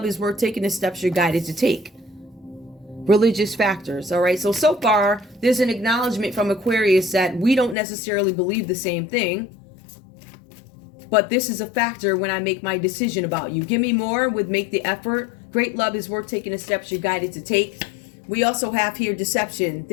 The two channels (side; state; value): right; drops out; at 7.8 s